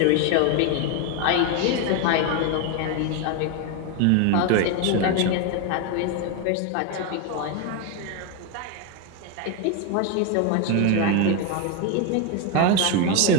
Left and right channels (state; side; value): different; both; correlation 0.01